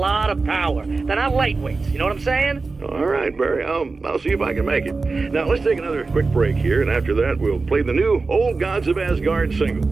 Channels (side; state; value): left; quieter; 4.0 dB